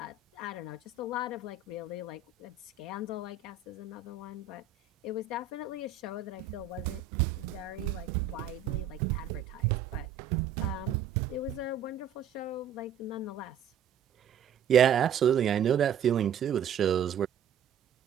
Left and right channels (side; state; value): left; quieter; 7.1 dB